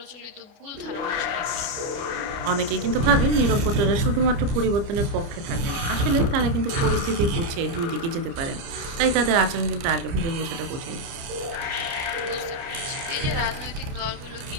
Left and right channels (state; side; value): late; left; 29 ms